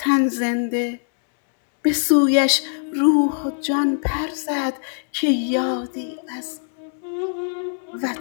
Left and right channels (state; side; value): silent; right; 64 dB below the other